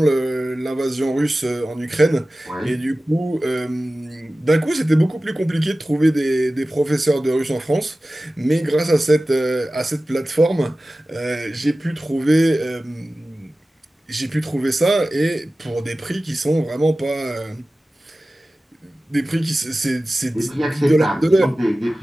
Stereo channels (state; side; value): normal; both; correlation 0.96